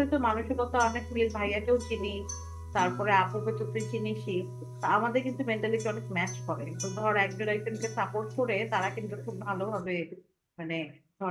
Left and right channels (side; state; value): both; identical; correlation 1.00